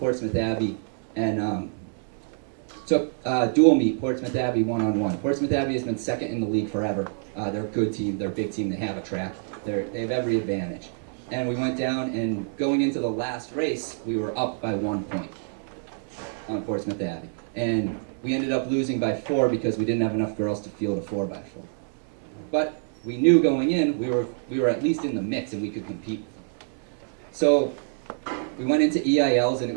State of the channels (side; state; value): left; silent; digital silence